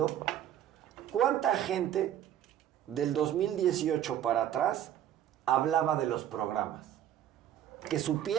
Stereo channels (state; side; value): quieter; left; 11.0 dB